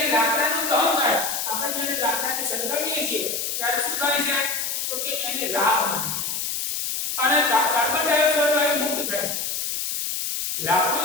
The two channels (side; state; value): left; noise; hiss, 2 dB below the sound